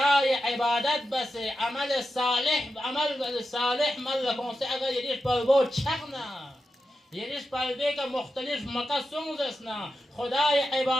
عبادت بس عمل صالح مل کنسه اگر یریش پلبو چغنا یریش پلبه که مختلف مکه سونزسنا خدای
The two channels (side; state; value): both; normal; correlation 0.90